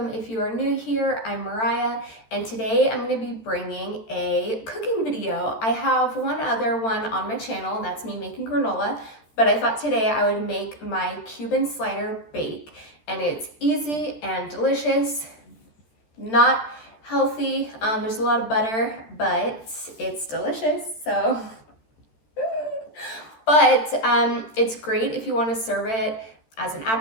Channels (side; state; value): right; late; 13 ms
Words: if you are new here. I'm Mariah, and today I'm going to be bringing a cooking video. I have one other one on my channel, and that's me making granola, but I thought today I would make my Cuban slider bake, and it's easy and delicious, not healthy. There's a lot of butter, but it's delicious, so. But it's great if you want to serve it as an